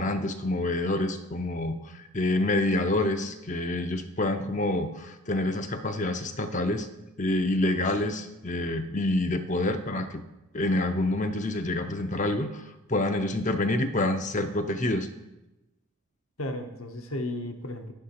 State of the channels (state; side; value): normal; both; correlation 0.50